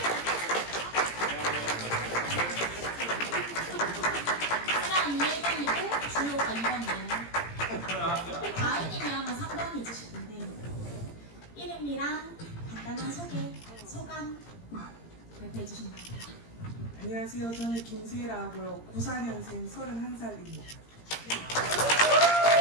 안녕하세요. 저는 김세라고요. 94년생 31살입니다.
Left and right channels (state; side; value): late; right; 17 ms